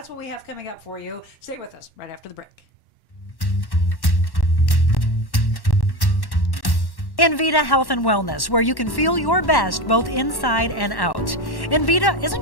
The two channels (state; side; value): late; right; 1.1 ms